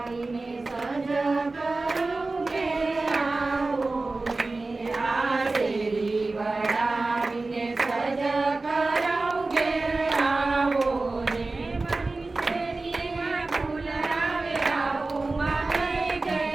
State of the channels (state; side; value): quieter; left; 3.4 dB